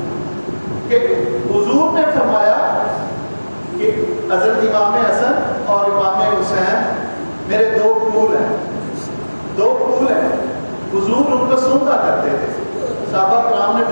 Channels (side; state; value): both; inverted; correlation -1.00